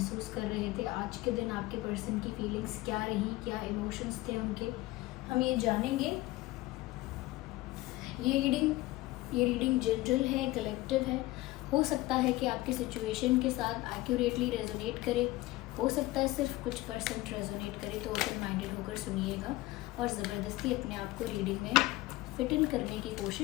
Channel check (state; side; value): quieter; right; 18.7 dB